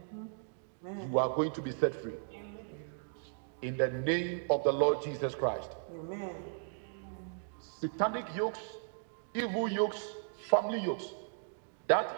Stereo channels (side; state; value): left; silent; digital silence